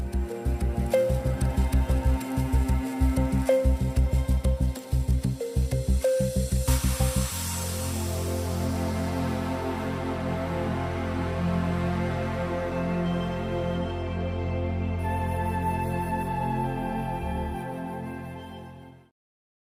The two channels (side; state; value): both; identical; correlation 1.00